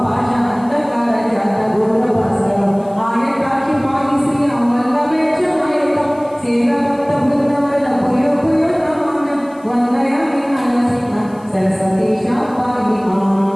భాష అంధకార జాత ఘోర భాస్కరం ఆయకాక్షి పాయి శ్రీ అమల్లవేక్ష మయకం సేవ భక్త బృందవన పుయో పుయో నమామ్యం వందయామి నరసింహ సరస్వతీశ పాయి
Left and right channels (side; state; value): left; noise; hiss, 30 dB below the sound